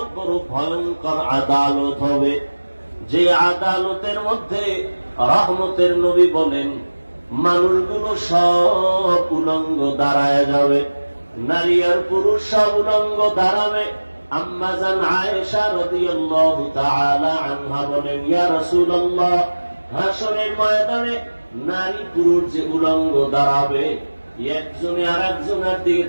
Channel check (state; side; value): inverted; both; correlation -1.00